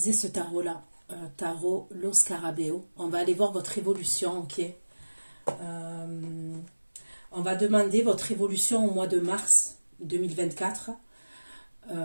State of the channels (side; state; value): both; inverted; correlation -1.00